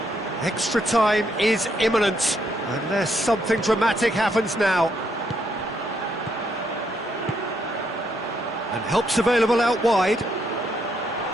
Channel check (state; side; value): normal; both; correlation 0.75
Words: Extra time is imminent, unless something dramatic happens now. And help's available out wide.